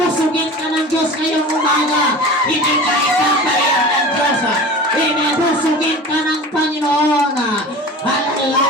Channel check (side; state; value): both; normal; correlation 0.36